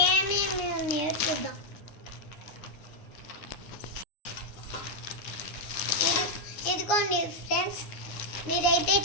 ఉన్నాయో చూద్దాం. ఇదిగోండి ఫ్రెండ్స్, మీరైతే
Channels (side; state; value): right; late; 9.7 ms